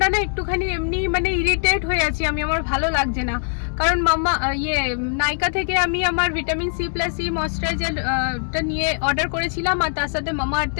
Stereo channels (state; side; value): silent; right; digital silence